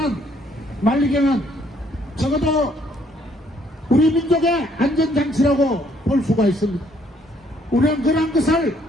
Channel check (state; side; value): normal; both; correlation 0.66